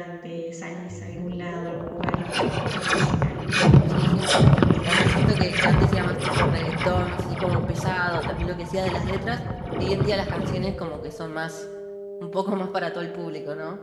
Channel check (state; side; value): identical; both; correlation 1.00